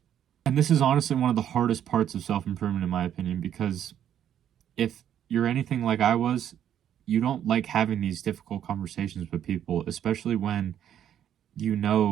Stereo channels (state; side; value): quieter; left; 10.1 dB